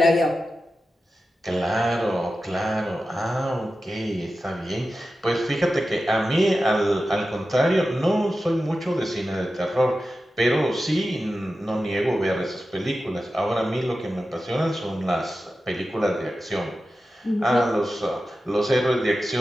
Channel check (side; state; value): both; normal; correlation 0.93